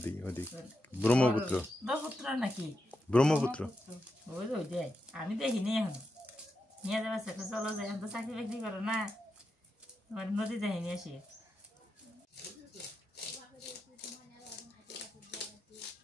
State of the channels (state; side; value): normal; both; correlation 0.87